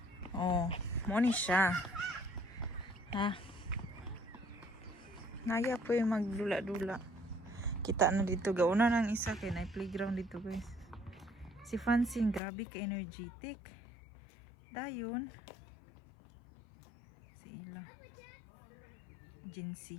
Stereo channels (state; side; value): drops out; right; at 12.4 s